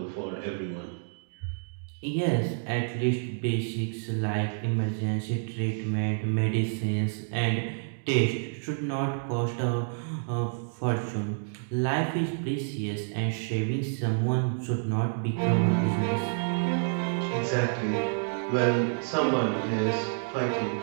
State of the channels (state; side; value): silent; left; digital silence